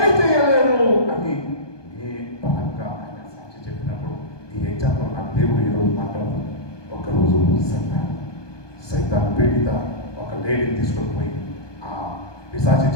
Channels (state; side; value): late; right; 1.2 ms